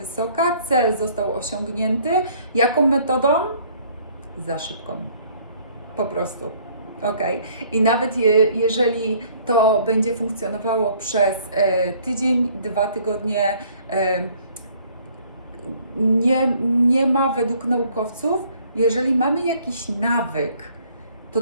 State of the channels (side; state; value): both; inverted; correlation -0.59